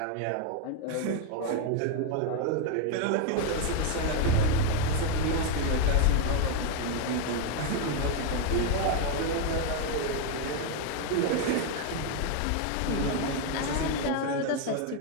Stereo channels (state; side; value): different; both; correlation 0.01